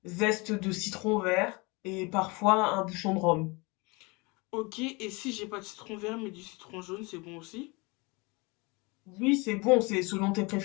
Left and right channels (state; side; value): quieter; right; 27.0 dB